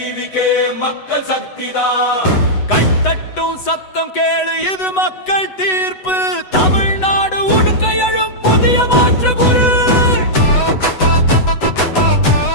மக்கள் சக்திதான். கைத்தட்டும் சத்தம் கேளு, இது மக்கள் தீர்ப்பு. தமிழ்நாடு உடுக்க எழும் புதிய மாற்று குரு.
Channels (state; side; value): late; right; 8.0 ms